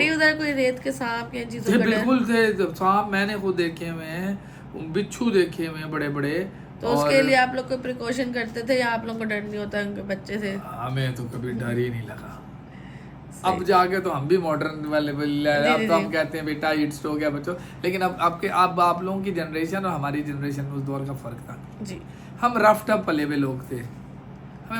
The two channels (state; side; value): identical; both; correlation 1.00